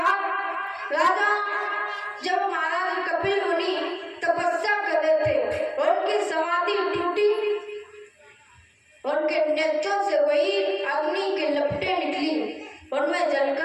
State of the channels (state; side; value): identical; both; correlation 1.00